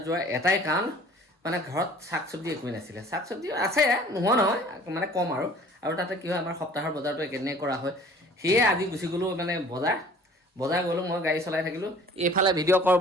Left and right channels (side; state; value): both; normal; correlation 0.50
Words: যোৱাৰ এটাই কাৰণ মানে ঘৰত শাক চব্জি একোৱেই নাছিলে শাক চব্জি আছে নোহোৱা নহয় মানে কম আৰু তাতে কি হয় আমাৰ সপ্তাহৰ বজাৰটো একেদিনাই কৰা হয় সেয়ে আজি গুচি গ'লোঁ মানে বজাৰ গ'লোঁ মই গাড়ী চলাই থাকিলোঁ এইফালে ভিডিঅ' কৰ